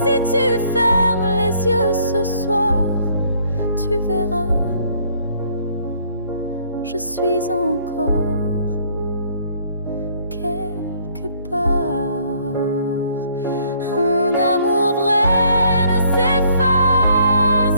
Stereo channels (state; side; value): inverted; both; correlation -0.63